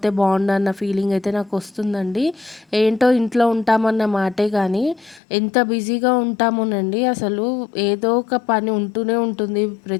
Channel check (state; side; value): drops out; right; at 5.2 s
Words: బావుండన్న ఫీలింగ్ అయితే నాకొస్తుందండి. ఏంటో ఇంట్లో ఉంటామన్న మాటే గానీ ఎంత బిజీగా ఉంటామోనండి అసలు ఏదో ఒక పని ఉంటూనే ఉంటుంది